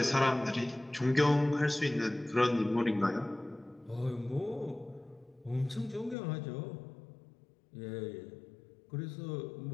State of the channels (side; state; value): right; drops out; at 6.2 s